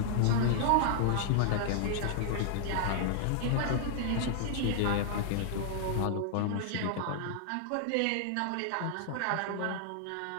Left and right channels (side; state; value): both; different; correlation -0.01